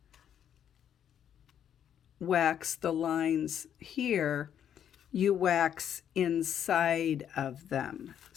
wax the lines here, you wax inside of them.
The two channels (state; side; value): quieter; right; 9.3 dB